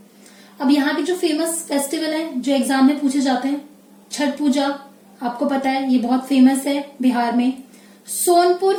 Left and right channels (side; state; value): both; identical; correlation 1.00